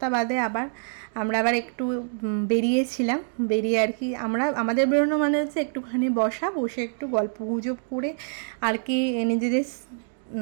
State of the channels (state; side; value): silent; left; digital silence